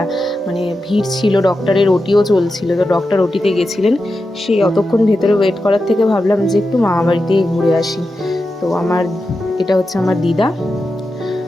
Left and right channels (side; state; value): both; normal; correlation 0.90